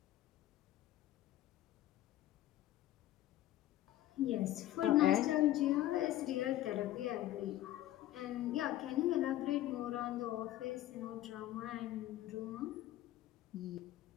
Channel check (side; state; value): right; quieter; 14.3 dB